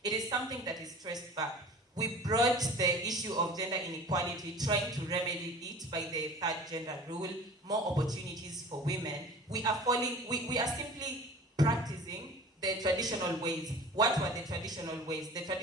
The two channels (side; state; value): both; normal; correlation 0.41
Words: It is something that is traced back. We brought the issue of gender inequality, trying to remedy it by the third gender rule, more opportunities for women. We are simply practicing the traditional ways. What were the traditional ways? The